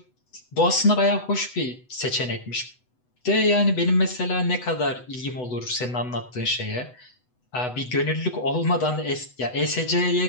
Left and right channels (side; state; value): right; late; 8.0 ms